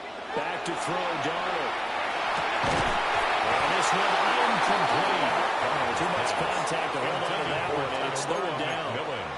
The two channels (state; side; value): identical; both; correlation 1.00